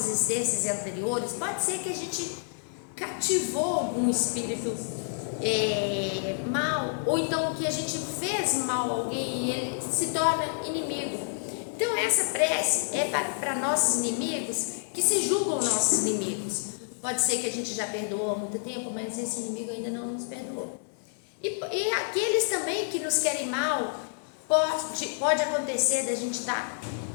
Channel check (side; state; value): right; silent; 59 dB below the other